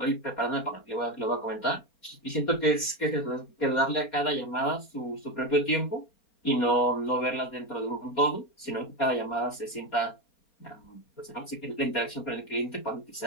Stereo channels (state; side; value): late; right; 4.2 ms